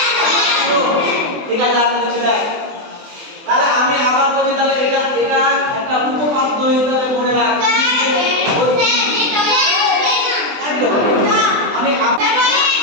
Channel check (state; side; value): late; left; 24 ms